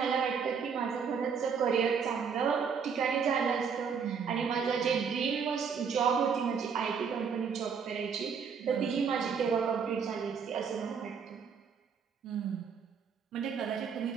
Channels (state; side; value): quieter; left; 6.4 dB